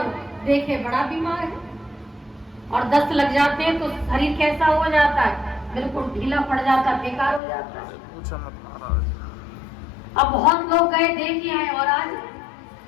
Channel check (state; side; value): drops out; right; at 7.4 s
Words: देखे बड़ा बीमार है, और दस्त लग जाते हैं तो शरीर कैसा हो जाता है, बिल्कुल ढीला पड़ जाता, बेकार हो जाता है। अब बहुत लोग गए देखे आए और आज